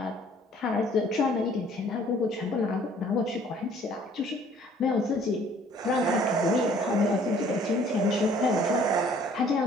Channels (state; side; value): normal; both; correlation 0.56